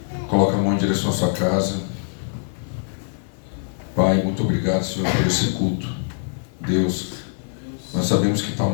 Coloca a mão em direção à sua casa. Pai, muito obrigado, Senhor, por esse culto. Deus, nós sabemos que está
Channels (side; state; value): right; silent; digital silence